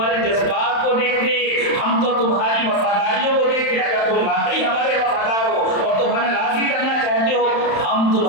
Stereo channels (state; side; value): late; right; 31 ms